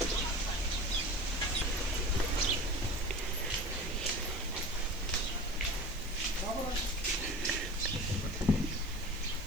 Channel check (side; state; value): right; noise; hiss, 19 dB below the sound